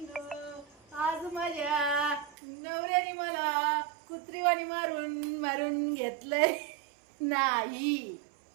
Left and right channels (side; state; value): left; drops out; at 2.4 s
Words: आज माझ्या नवऱ्याने मला कुत्रीवाणी मारून मारून घेतलंय. नाही,